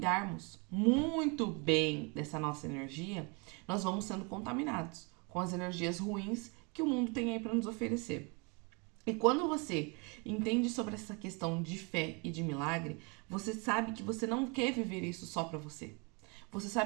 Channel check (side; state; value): left; quieter; 31.8 dB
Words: muito bem dessa nossa energia, nós vamos sendo contaminados com as energias ruins que o mundo tem aí para nos oferecer. E quando você entende sobre essa questão de fé e de milagre, você sabe que você não quer viver isso só para você. Você